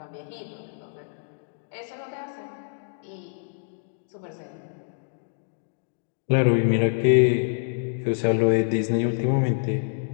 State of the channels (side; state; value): right; silent; digital silence